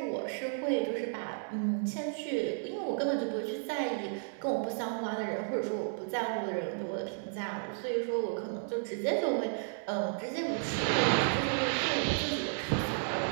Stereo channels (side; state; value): left; silent; digital silence